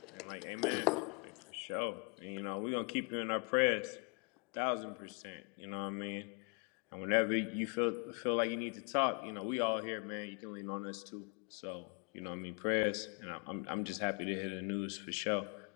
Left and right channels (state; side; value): quieter; right; 33.6 dB